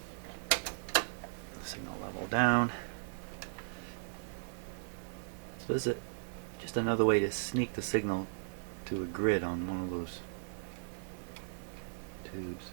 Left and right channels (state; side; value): silent; left; digital silence